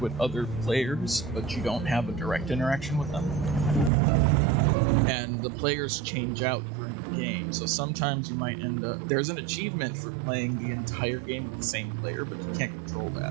with other players, but you don't have a direct interaction with them. And the players change out during the game, so sometimes you might end up... There's an achievement for playing the entire game with the same player, but you can't control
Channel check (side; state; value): left; drops out; at 3.9 s